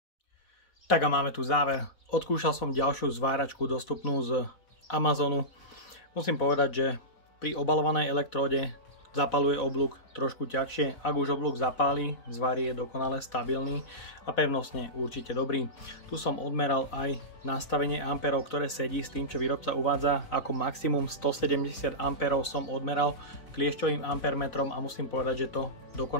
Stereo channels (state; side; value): late; right; 4.1 ms